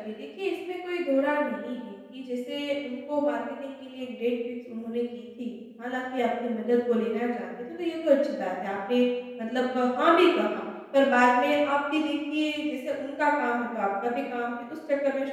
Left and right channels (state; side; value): identical; both; correlation 1.00